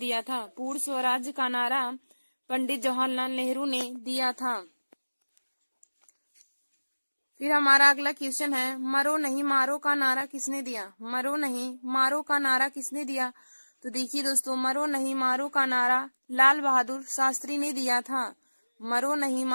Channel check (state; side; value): inverted; both; correlation -1.00